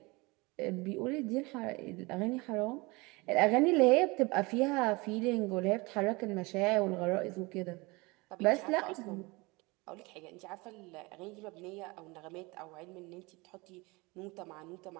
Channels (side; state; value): left; quieter; 24.8 dB